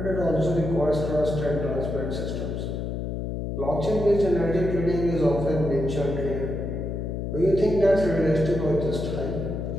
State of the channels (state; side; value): noise; left; hum, 3 dB below the sound